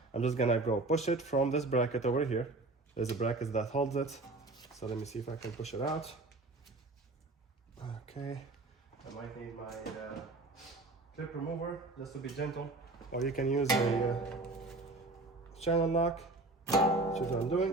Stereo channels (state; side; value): quieter; left; 3.0 dB